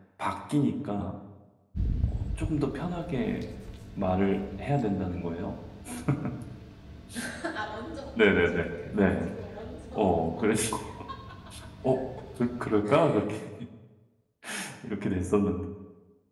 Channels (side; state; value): both; identical; correlation 1.00